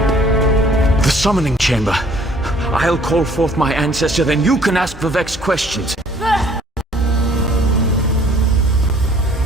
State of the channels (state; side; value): normal; both; correlation 0.57